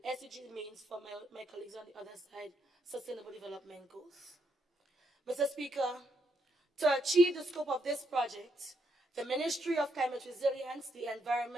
SDG means, for my colleagues on the other side, Sustainable Development Goals. Mr. Speaker, to achieve the scope of this project, the Ministry of Climate Resilience, the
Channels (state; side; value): normal; both; correlation 0.77